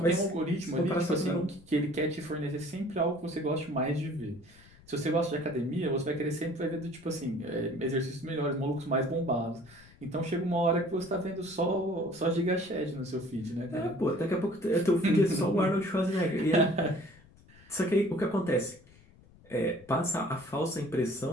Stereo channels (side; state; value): left; noise; rumble, 25 dB below the sound